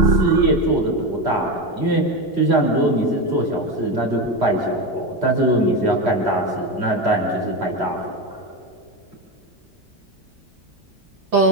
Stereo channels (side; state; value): left; late; 3.1 ms